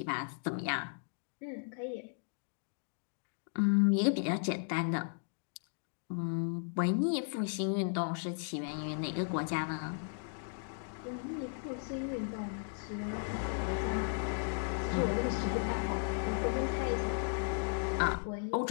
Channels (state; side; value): silent; right; digital silence